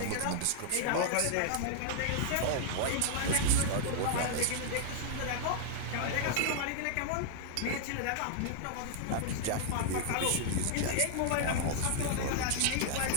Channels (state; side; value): different; both; correlation -0.01